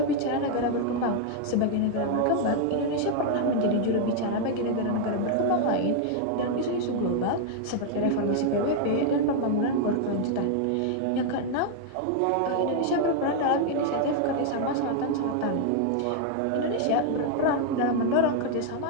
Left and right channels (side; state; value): both; different; correlation 0.00